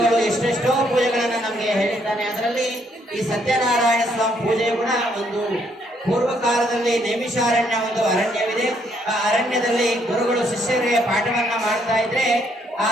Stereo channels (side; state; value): both; normal; correlation 0.70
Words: ಎಷ್ಟೆಷ್ಟೋ ಪೂಜೆಗಳನ್ನ ನಮಗೆ ಹೇಳಿದ್ದಾನೆ. ಅದರಲ್ಲಿ ಈ ಸತ್ಯನಾರಾಯಣ ಸ್ವಾಮಿ ಪೂಜೆ ಕೂಡ ಒಂದು ಪೂರ್ವ ಕಾಲದಲ್ಲಿ ನೈಮಿಷಾರಣ್ಯ ಒಂದು ಅರಣ್ಯವಿದೆ. ಆ ಅರಣ್ಯದಲ್ಲಿ ಗುರುಗಳು ಶಿಷ್ಯರಿಗೆ ಪಾಠವನ್ನ ಮಾಡ್ತಾ ಇದ್ರೆ ಆ